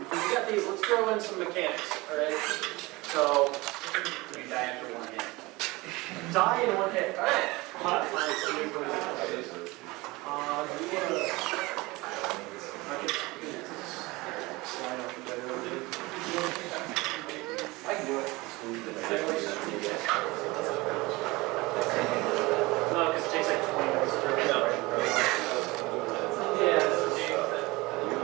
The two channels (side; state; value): left; quieter; 22.4 dB